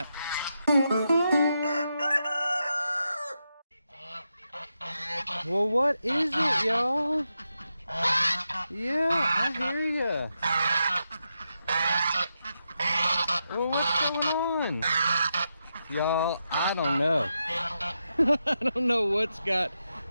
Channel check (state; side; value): inverted; both; correlation -0.86